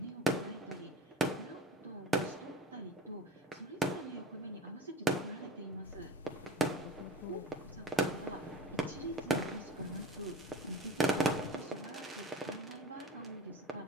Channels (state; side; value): normal; both; correlation 0.35